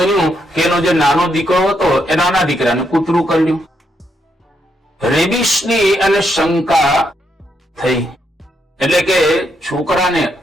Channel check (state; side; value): normal; both; correlation 0.78